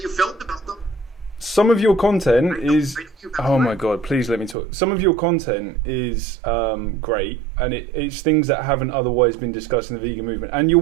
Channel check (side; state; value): left; drops out; at 4.5 s